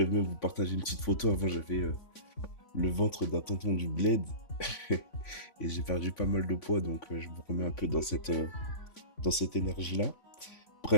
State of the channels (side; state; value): right; late; 3.5 ms